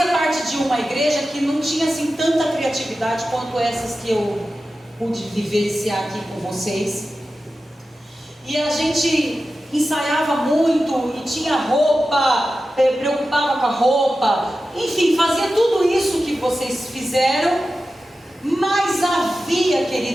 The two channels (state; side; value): normal; both; correlation 0.93